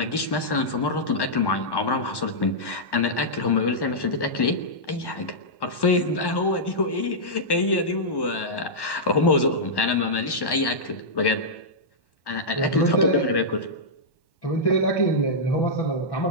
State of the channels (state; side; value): late; right; 1.1 ms